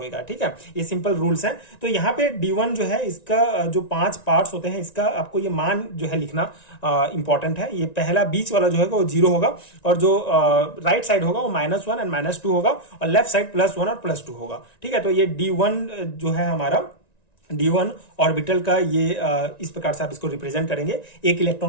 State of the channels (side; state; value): right; late; 1.9 ms